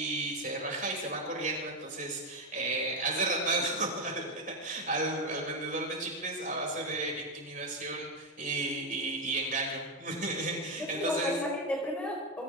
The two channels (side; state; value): both; normal; correlation 0.08